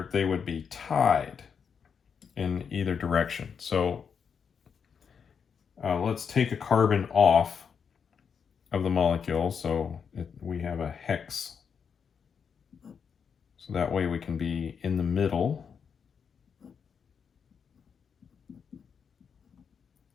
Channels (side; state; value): right; quieter; 6.7 dB